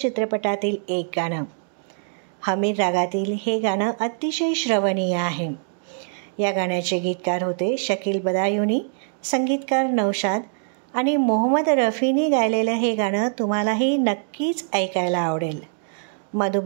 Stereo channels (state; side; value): silent; left; digital silence